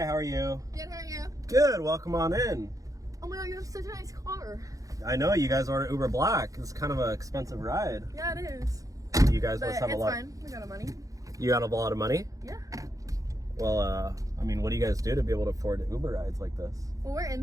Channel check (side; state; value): left; late; 0.17 ms